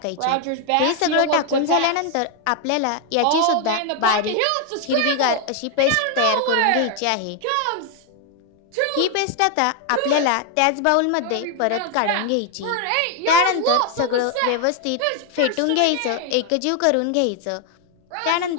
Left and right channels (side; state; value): both; different; correlation 0.01